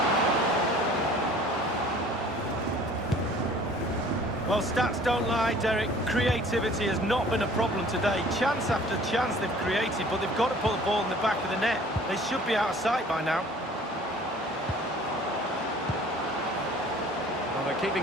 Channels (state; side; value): normal; both; correlation 0.50